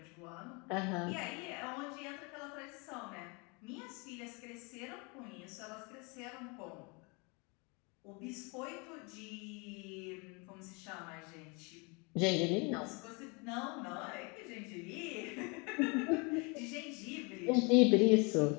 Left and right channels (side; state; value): right; quieter; 30.4 dB